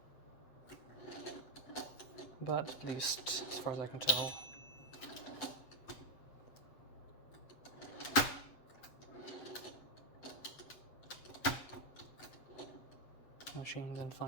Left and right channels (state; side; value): late; right; 8.0 ms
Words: But at least, as far as I can tell, the machine is in